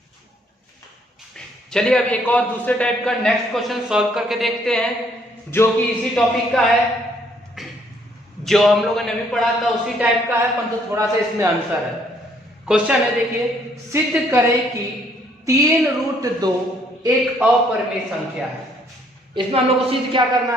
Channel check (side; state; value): both; normal; correlation 0.66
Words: चलिए अब एक और दूसरे टाइप का नेक्स्ट क्वेश्चन सॉल्व करके देखते हैं, जो कि इसी टॉपिक का है, जो हम लोगों ने अभी पढ़ा था उसी टाइप का है, परंतु थोड़ा सा इसमें आंसर है। क्वेश्चन है, देखिए, सिद्ध करें कि 3√2 एक अपरिमेय संख्या है। इसमें हम लोग को सिद्ध क्या करना